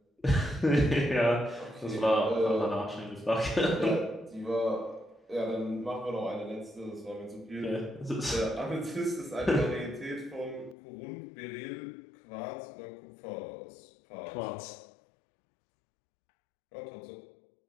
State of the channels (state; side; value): drops out; right; at 10.8 s